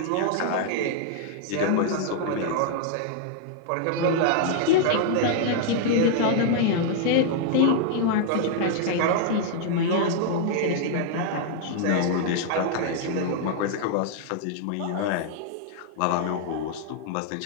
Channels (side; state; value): both; different; correlation -0.01